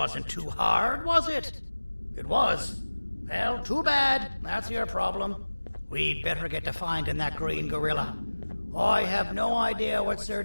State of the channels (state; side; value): inverted; both; correlation -1.00